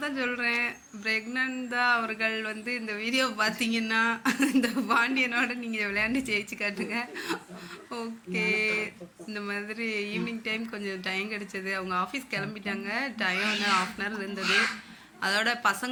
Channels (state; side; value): identical; both; correlation 1.00